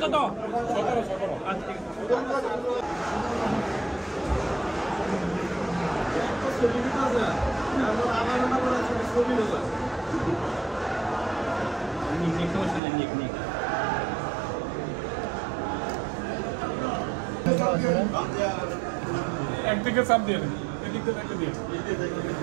কত? একদিকে চাপ দিয়ে দেন, এদিক দিয়ে একটা দিয়ে।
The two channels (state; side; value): drops out; left; at 12.8 s